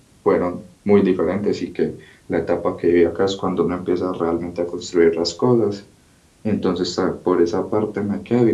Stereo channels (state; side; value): identical; both; correlation 1.00